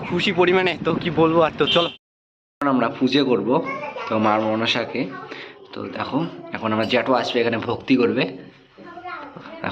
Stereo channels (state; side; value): identical; both; correlation 1.00